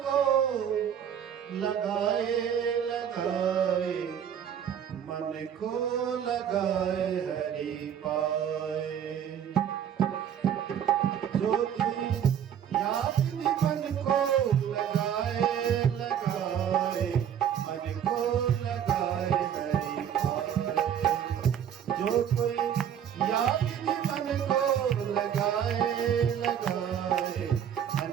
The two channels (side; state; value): left; quieter; 9.1 dB